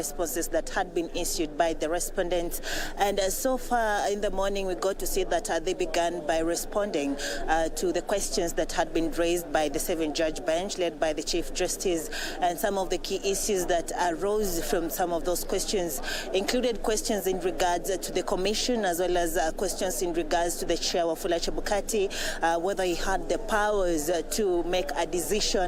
that had been issued by the respondents. And so far in the morning, we got to see that they began by responding to the questions that had been raised by the 7-judge bench led by the Chief Justice. And some of the key issues that arose from some of those questions included questions in regards to the commission, as well as questions in regards to the chair Wafula Chebukati, whether he had the powers to make a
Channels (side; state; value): both; identical; correlation 1.00